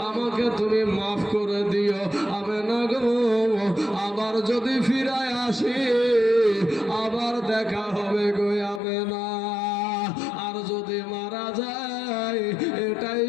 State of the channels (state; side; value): drops out; right; at 8.8 s